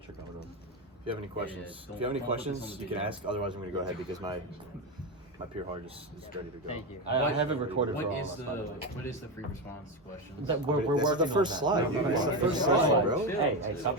going on. if you have any questions, you can ask. Otherwise, I'm gonna go ahead because my peer hard is ready to go. Thank you. I have it recorded for What all is of us, by the way. what is the free response question? We're This is working the first on slide, that. dude. It's the It's first the slide, bro. Hey, stop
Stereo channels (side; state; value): both; normal; correlation 0.14